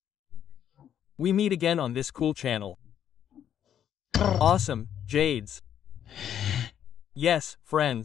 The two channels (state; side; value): quieter; right; 9.7 dB